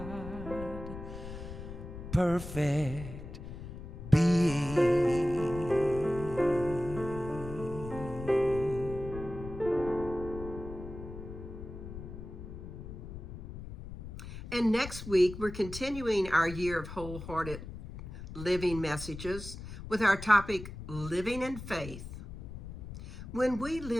perfect being. And next week, we're continuing our year of wholehearted living messages with our topic, Living in Faith. When we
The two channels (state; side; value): noise; left; rumble, 11 dB below the sound